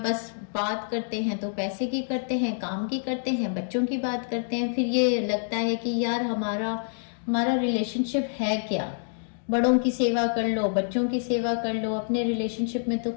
बस बात करते हैं तो पैसे की करते हैं, काम की करते हैं, बच्चों की बात करते हैं, फिर ये लगता है कि यार हमारा रिलेशनशिप है क्या। बड़ों की सेवा कर लो, बच्चों की सेवा कर लो, अपने रिलेशनशिप में तो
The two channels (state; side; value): silent; right; digital silence